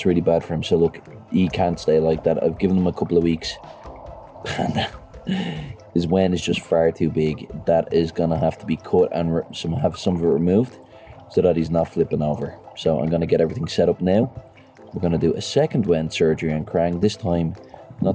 really bad for him. So look, he can't stay like that. I've given him a couple of weeks. And his Wen is just far too big. That is gonna have to be cut and have some of it removed, so that he's not flipping over. So I'm gonna get everything set up now. We're gonna do a second Wen surgery on Krang, this time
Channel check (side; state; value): both; identical; correlation 1.00